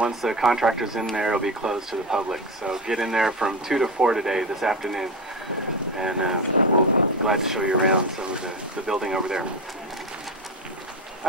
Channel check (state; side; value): normal; both; correlation 0.19